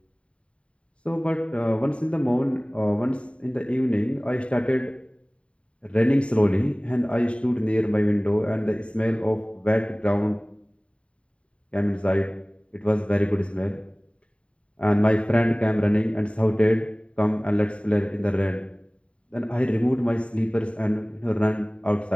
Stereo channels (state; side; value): late; right; 0.061 ms